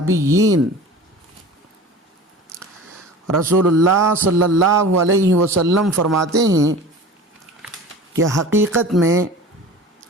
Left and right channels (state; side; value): normal; both; correlation 0.38